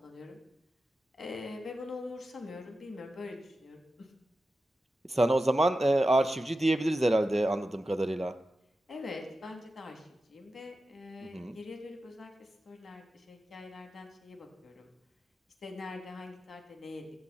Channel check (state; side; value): normal; both; correlation 0.92